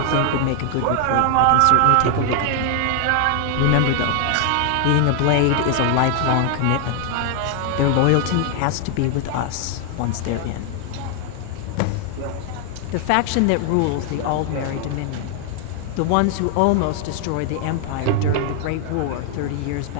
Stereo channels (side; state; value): both; different; correlation 0.00